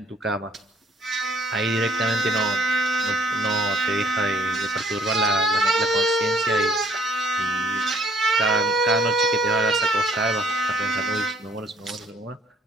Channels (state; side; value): normal; both; correlation 0.61